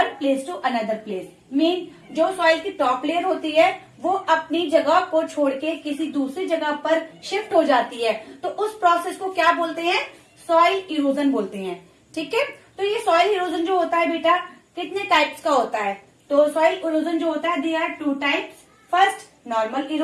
place to another place, mean जो soil की top layer होती है वो अपनी जगह को छोड़ के किसी दूसरी जगह पर शिफ्ट हो जाती है, तो उस प्रोसेस को क्या बोलते हैं? सॉइल इरोजन बोलते हैं. ठीक है, तो ये सॉइल इरोजन जो होता है बेटा कितने टाइप्स का होता है? तो सॉइल इरोजन जो होता है they are two types. First normal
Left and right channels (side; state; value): both; identical; correlation 1.00